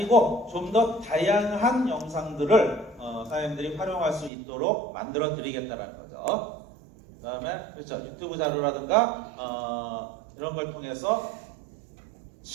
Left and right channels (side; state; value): left; drops out; at 4.3 s